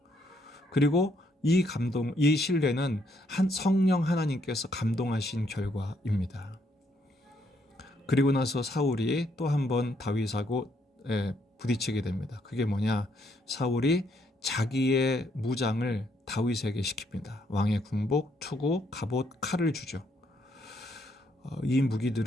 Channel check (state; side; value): normal; both; correlation 0.72